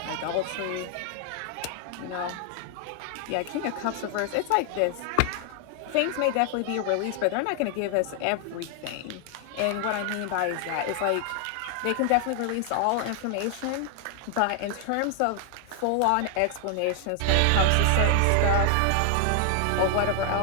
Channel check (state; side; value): different; both; correlation 0.00